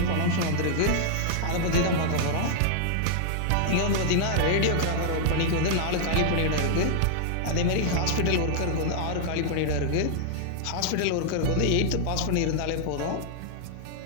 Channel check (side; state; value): both; different; correlation -0.01